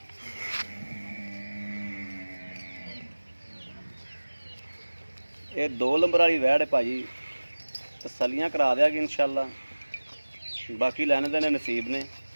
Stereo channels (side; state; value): both; inverted; correlation -1.00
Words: ਇਹ 2 ਨੰਬਰ ਵਾਲੀ ਵੈੜ ਹੈ ਭਾਜੀ, ਤਸੱਲੀਆਂ ਕਰਾ ਦਿਆਂਗੇ ਇੰਸ਼ਾਅੱਲਾ। ਬਾਕੀ ਲੈਣੇ ਦੇਣੇ ਨਸੀਬ ਨੇ।